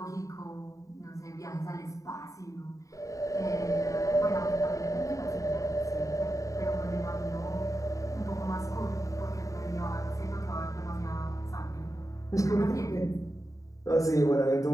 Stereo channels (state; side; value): late; right; 0.16 ms